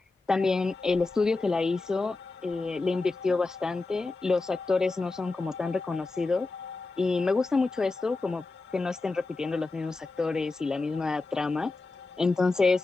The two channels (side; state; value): right; quieter; 3.6 dB